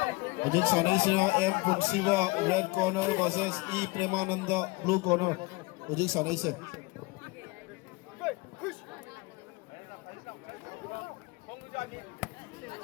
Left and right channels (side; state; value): right; quieter; 24.3 dB